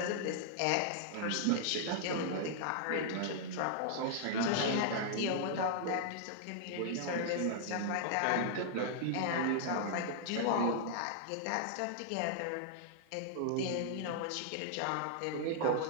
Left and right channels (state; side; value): different; both; correlation -0.01